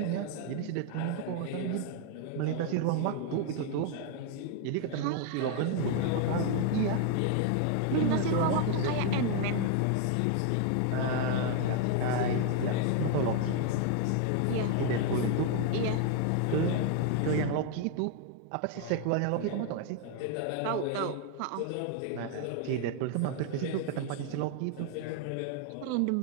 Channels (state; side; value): different; both; correlation 0.00